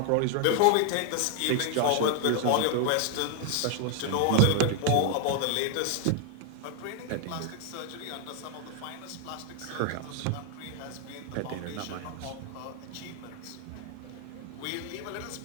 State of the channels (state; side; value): different; both; correlation 0.01